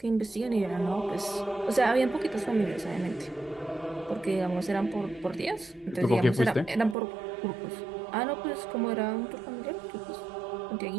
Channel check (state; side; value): drops out; left; at 7.0 s